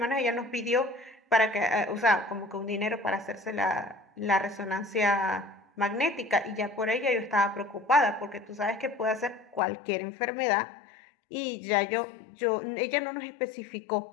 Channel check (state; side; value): drops out; right; at 9.6 s